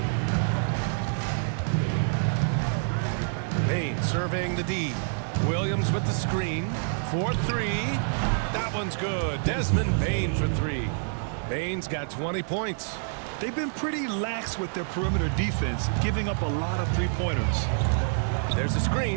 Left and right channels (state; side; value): silent; left; 60 dB below the other